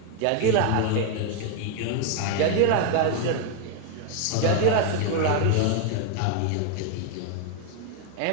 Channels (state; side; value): different; both; correlation 0.01